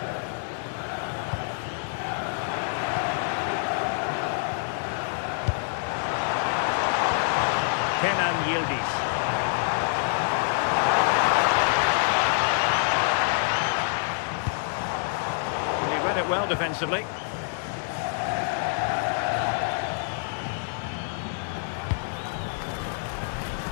Kenan Yildiz. He read it well defensively.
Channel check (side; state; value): right; silent; digital silence